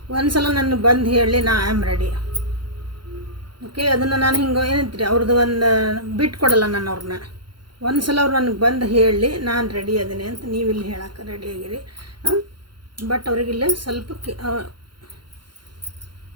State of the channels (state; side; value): late; left; 0.72 ms